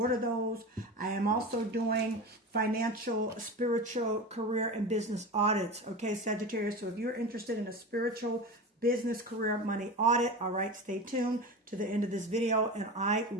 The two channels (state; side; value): normal; both; correlation 0.28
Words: those. I am also doing financial, spiritual, career, and business audits, okay, Sagittarius? So if you're interested in a spiritual, business, career, money audit, all right, stay tuned to the end of this video and I